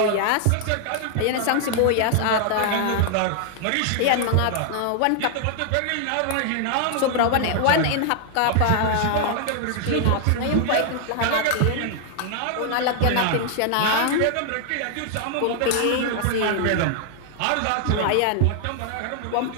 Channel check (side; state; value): both; different; correlation 0.00